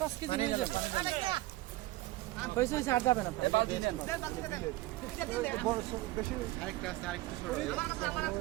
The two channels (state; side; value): quieter; left; 18.1 dB